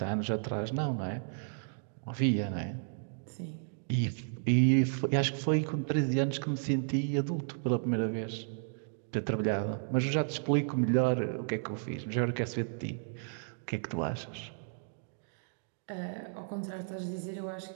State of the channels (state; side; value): silent; left; digital silence